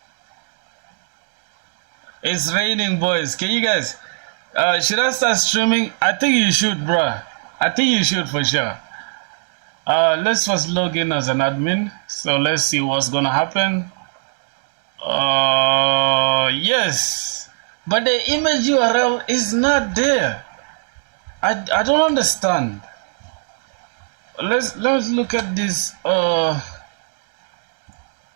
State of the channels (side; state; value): left; silent; digital silence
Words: It's raining, boys. Can you guys should I start streaming? I think you should, bruh. I think you should for sure. Let's first log in as an admin. So let's see what's gonna happen. Yes, but the image URL is not there. I don't understand. Let's look at this.